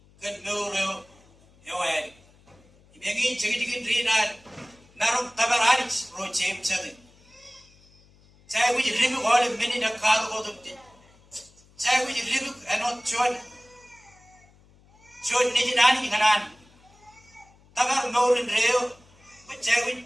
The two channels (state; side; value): noise; left; hum, 29 dB below the sound